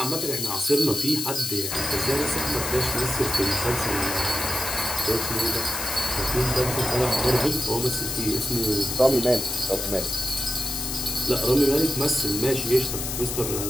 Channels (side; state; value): left; noise; hiss, 4 dB below the sound